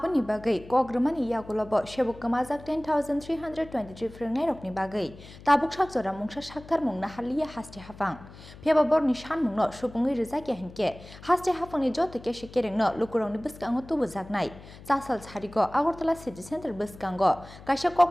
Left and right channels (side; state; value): left; noise; hum, 18 dB below the sound